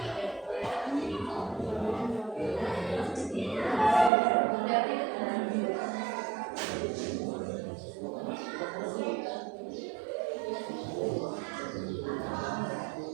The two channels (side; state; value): left; drops out; at 4.1 s